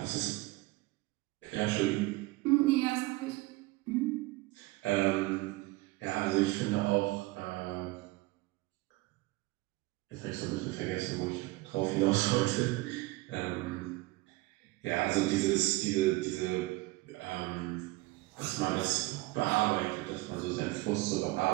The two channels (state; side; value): quieter; left; 20.8 dB